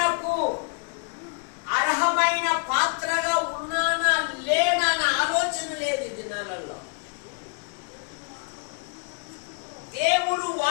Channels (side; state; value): right; quieter; 37.7 dB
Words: అర్హమైన పాత్రగా ఉన్నానా లేనా అనే ఆలోచన లేదు ఈ దినాలలో. దేవుడు